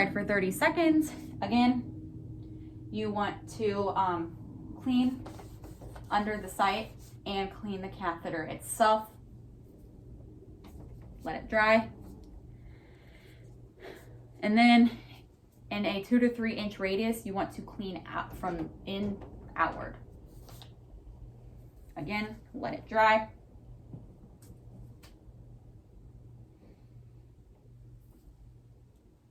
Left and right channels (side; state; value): both; identical; correlation 1.00